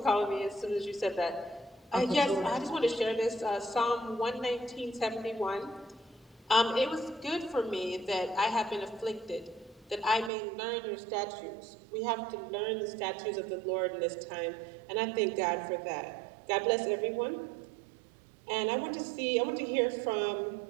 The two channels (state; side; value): drops out; left; at 10.3 s